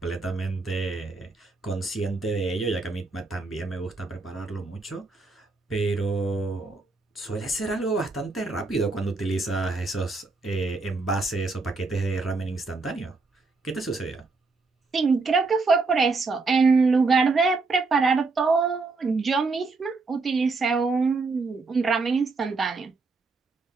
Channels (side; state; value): left; quieter; 3.9 dB